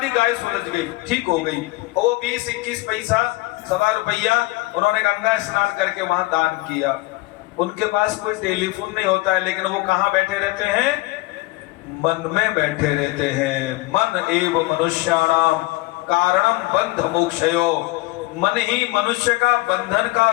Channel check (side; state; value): right; quieter; 21.1 dB